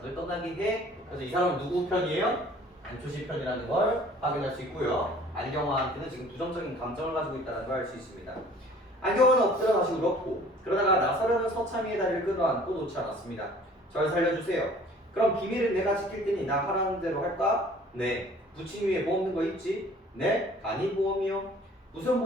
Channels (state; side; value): normal; both; correlation 0.51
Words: 떠나게 해. 그래서 이 사람은 누구 편이에요? 안초시 편이라는 걸 확인할 수 있고요. 안경화한테는 지금 부정적인 감정을 가지고 있다는 걸 알 수 있습니다. 안경화는 엎드려 다시 울었고 그러다가 나서려는 서참이의 다리를 끌어안고 놓지 않았습니다. 절 살려주세요. 그럼 비밀은 내가 지킬 테니 나 하라는 대로 할까? 네. 부친 위에 뭐 없는 거 있지? 네. 간이 보험이요. 무슨